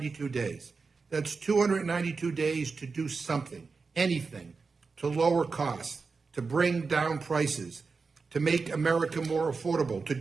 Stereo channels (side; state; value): left; quieter; 4.6 dB